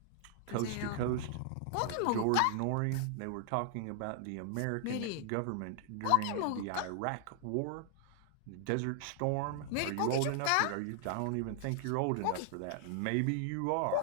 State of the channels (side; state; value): both; different; correlation 0.00